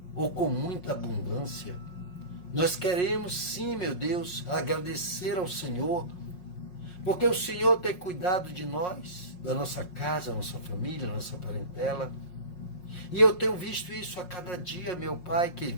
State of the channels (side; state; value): right; late; 5.5 ms